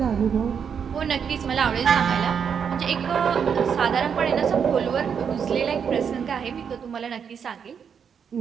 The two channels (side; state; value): left; quieter; 7.2 dB